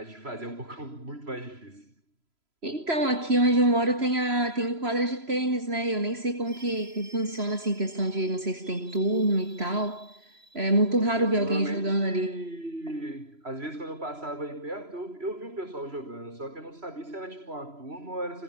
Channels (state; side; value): late; left; 3.0 ms